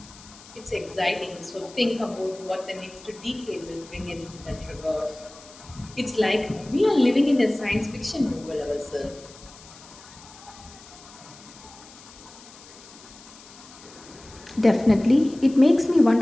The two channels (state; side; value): noise; left; hiss, 20 dB below the sound